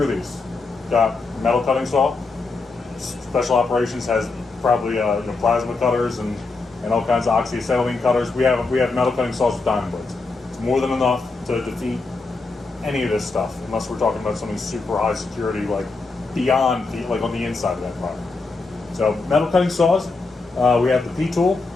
these. Got metal cutting saw. Special operations has probably plasma cutters and all kinds of oxyacetylene cutters. We have metal cutting saws with diamond blades. It's more than enough to defeat any of this stuff, unless we're talking about something super high security, like beyond like on the inside of that environment. So metal cutting saws. We have the P-tool.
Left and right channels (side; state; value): right; quieter; 3.8 dB